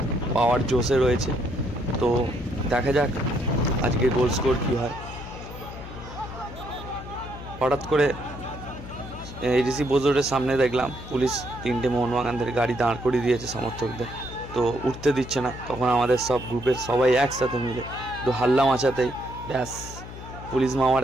पावर जोशे रयेছে। तो देखा जाक आजके गोल स्कोर कि हय। हठात् करे एडिसि बोजोरेर सामने देखलाम पुलिस 3টে मोहनबागानদের गाड़ी दाঁড় करिয়ে दिएছে समर्थकদের। तो उठते दिच्छे ना। तखन आमादेर सब ग्रुपेर सबाई एकसाथे मिले तो हाल्ला माचातेई ब्यास पुलिस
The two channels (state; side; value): noise; left; hum, 12 dB below the sound